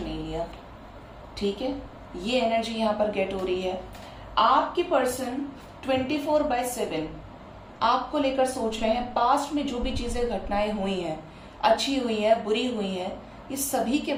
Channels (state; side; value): identical; both; correlation 1.00